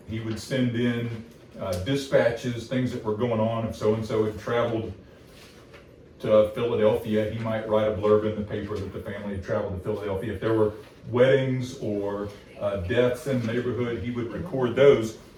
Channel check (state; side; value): identical; both; correlation 1.00